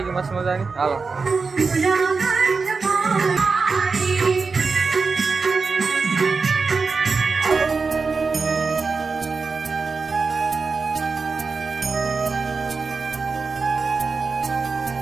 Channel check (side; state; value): left; quieter; 4.5 dB